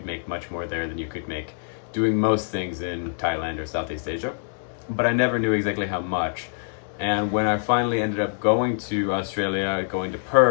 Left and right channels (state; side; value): silent; right; digital silence